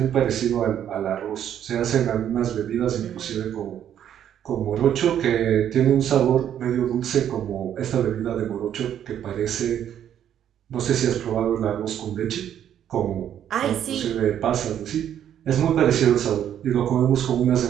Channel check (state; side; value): quieter; left; 10.0 dB